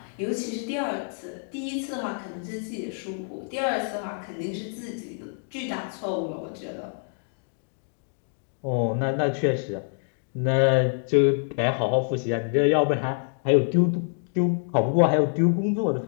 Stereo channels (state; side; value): silent; right; 61 dB below the other